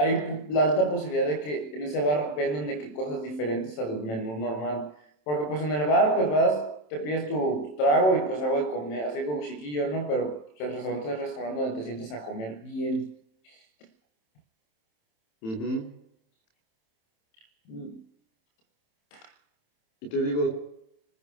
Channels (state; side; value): late; right; 27 ms